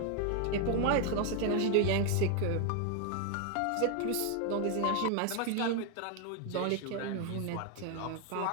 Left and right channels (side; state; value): both; different; correlation 0.00